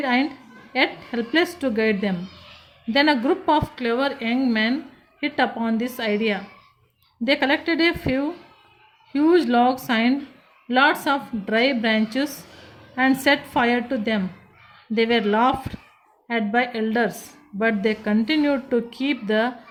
and yet helpless to guide them. Then a group of clever young men hit upon this idea. They collected a few huge logs and lots of dry branches and set fire to them. They were laughed at by elders, but they continued to keep the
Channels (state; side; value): identical; both; correlation 1.00